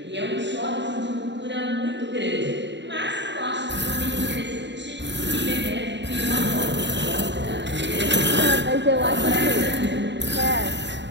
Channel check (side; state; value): left; late; 0.52 ms